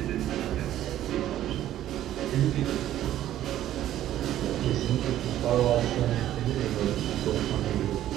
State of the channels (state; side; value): quieter; left; 12.6 dB